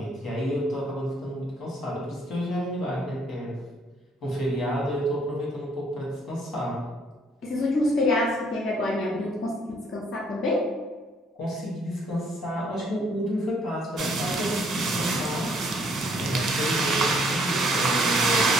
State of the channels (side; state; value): both; normal; correlation 0.65